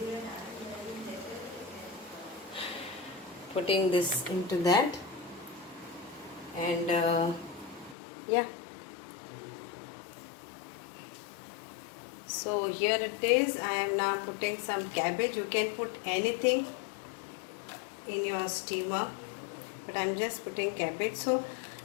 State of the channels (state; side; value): drops out; right; at 8.0 s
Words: putting this into that, and yeah. So here it is. I am now putting some cabbage. You can put anything in your steamer, but I'm just putting cabbage, so